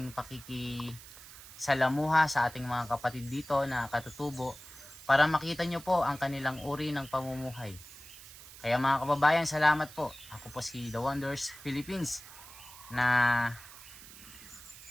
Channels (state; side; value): noise; right; hiss, 17 dB below the sound